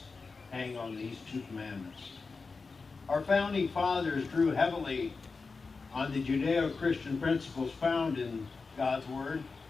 hang on these two commandments. Our founding fathers drew heavily on the Judeo-Christian principles found in God's Word,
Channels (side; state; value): right; quieter; 4.4 dB